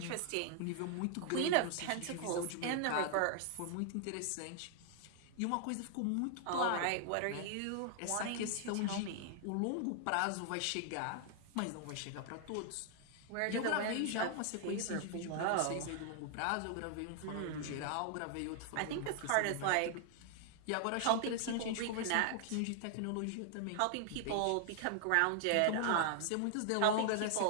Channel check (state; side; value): different; both; correlation 0.00